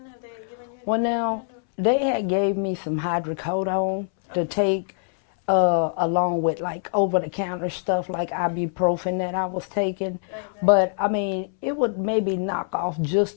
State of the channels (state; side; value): silent; right; 62 dB below the other